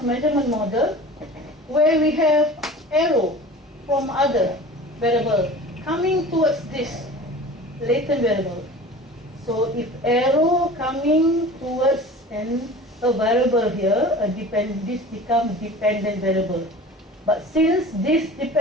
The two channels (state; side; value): normal; both; correlation 0.39